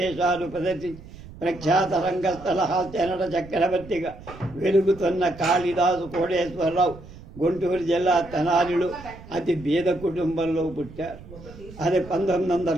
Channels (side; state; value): right; noise; rumble, 17 dB below the sound